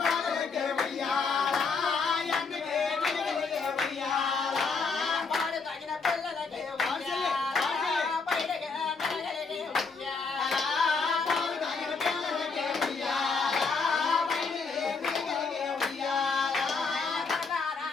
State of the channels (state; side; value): quieter; right; 4.7 dB